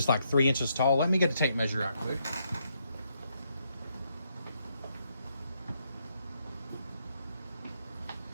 like 3 inches tall. Let me get a tape measure out quick.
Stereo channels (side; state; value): both; inverted; correlation -0.76